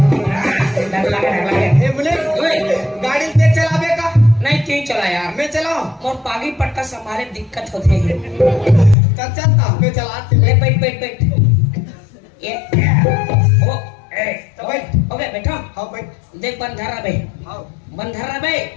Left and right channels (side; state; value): right; drops out; at 9.0 s